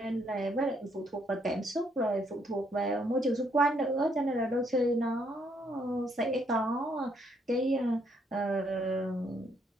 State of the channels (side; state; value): both; normal; correlation 0.71